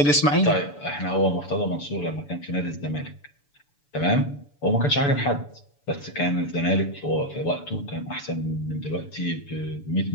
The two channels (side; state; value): right; late; 6.9 ms